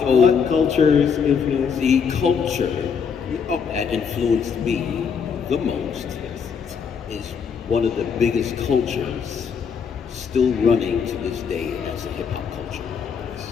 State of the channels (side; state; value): right; quieter; 6.5 dB